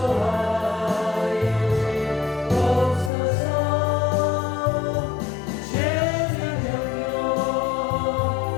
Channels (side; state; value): right; drops out; at 3.1 s